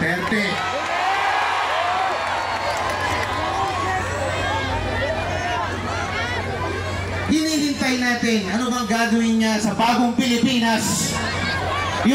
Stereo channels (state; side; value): identical; both; correlation 1.00